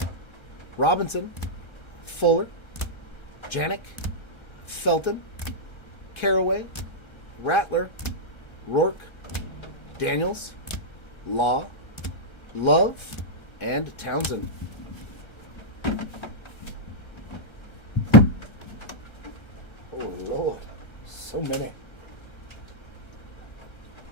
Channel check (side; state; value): right; late; 1.3 ms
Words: Robinson, Fuller, Janik, Felton, Caraway, Rattler, Rourke, Daniels, Law, Love, and Townsend. Oh, Lord. So many.